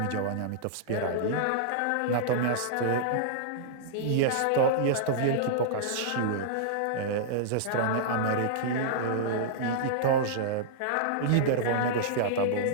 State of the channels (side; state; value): both; different; correlation -0.02